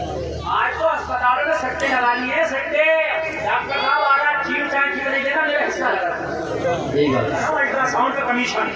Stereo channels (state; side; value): identical; both; correlation 1.00